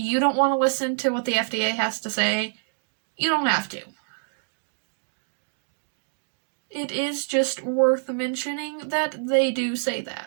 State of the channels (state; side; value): silent; left; digital silence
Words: don't want to listen to what the FDA has to say, you don't have to. It is just worth mentioning that they do say